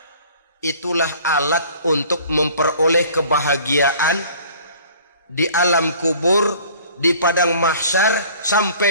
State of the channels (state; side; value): inverted; both; correlation -0.50